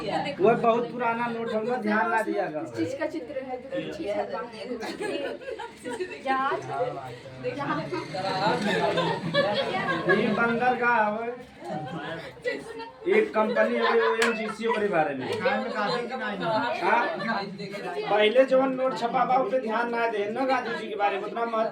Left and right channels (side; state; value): both; identical; correlation 1.00